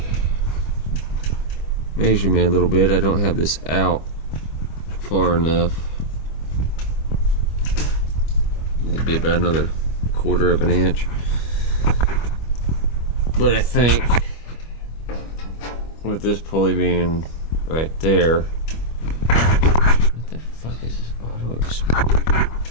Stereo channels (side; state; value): right; late; 25 ms